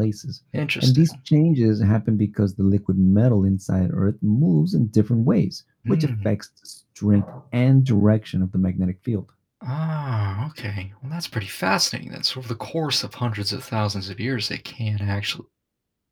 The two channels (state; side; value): identical; both; correlation 1.00